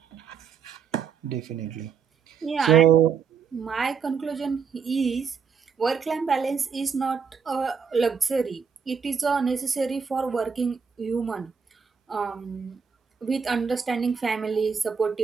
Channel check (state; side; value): quieter; left; 6.2 dB